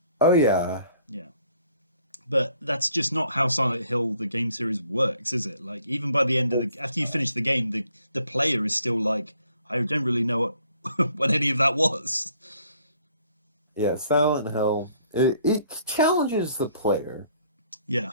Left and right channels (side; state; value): both; inverted; correlation -0.63